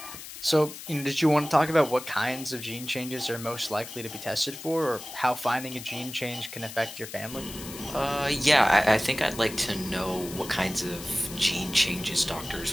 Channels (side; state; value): left; noise; hiss, 12 dB below the sound